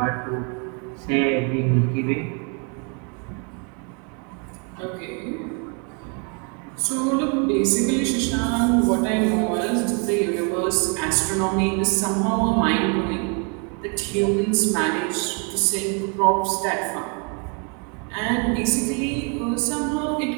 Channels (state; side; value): quieter; left; 36.6 dB